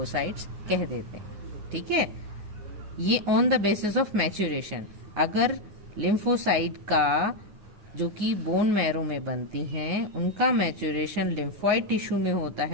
कह देते हैं। ठीक है, ये on the basis of maturation, अगर लिम्फोसाइट का जो कि बोन मैरो में बनती हैं उनका मैच्योरेशन लिम्फॉइड टिश्यू में होता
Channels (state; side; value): late; left; 9.9 ms